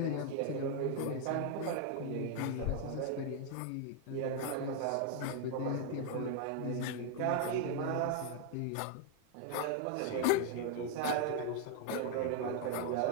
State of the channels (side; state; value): both; different; correlation 0.00